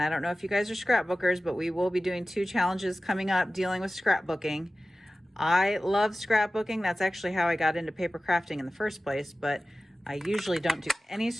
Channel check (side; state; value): both; normal; correlation 0.96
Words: I don't know if you guys are scrapbookers, but we will be doing 2 challenges coming up dealing with scrapbooking. I love scrapbooking. That's actually how I got into paper crafting in the first place, but I usually don't do any